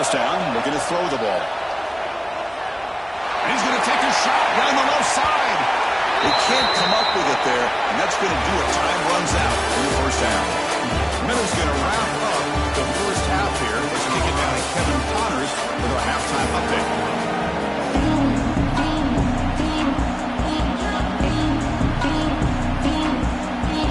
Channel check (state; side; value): identical; both; correlation 1.00